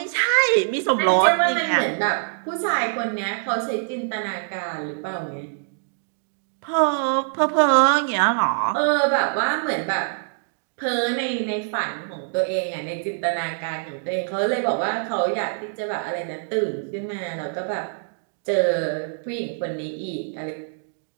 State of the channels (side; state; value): left; silent; digital silence